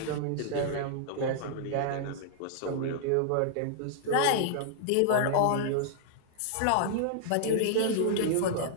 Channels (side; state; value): both; different; correlation -0.01